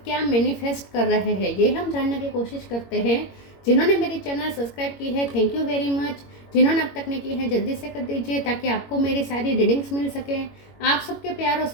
क्या मैनिफेस्ट कर रहे हैं। ये हम जानने की कोशिश करते हैं। जिन्होंने मेरी चैनल सब्सक्राइब की है, थैंक यू वेरी मच। जिन्होंने अब तक नहीं की है, जल्दी से कर दीजिए ताकि आपको मेरी सारी रीडिंग्स मिल सकें। आप सबके प्यार और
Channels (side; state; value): right; late; 21 ms